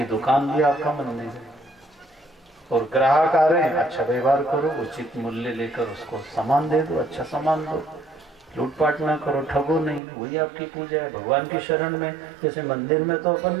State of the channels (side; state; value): left; drops out; at 10.0 s